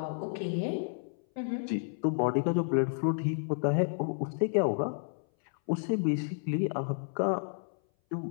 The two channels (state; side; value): silent; right; 57 dB below the other